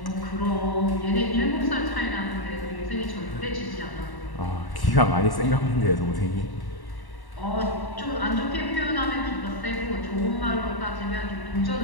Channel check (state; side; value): late; right; 1.1 ms